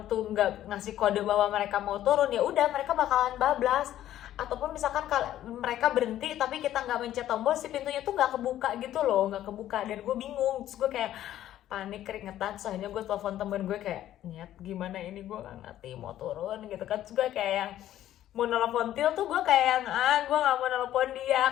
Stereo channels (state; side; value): quieter; right; 12.6 dB